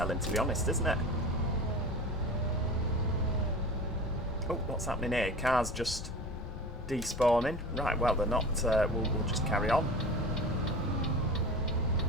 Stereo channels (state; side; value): normal; both; correlation 0.34